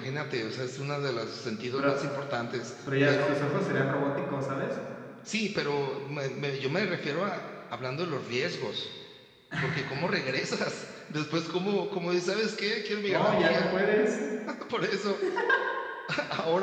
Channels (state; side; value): identical; both; correlation 1.00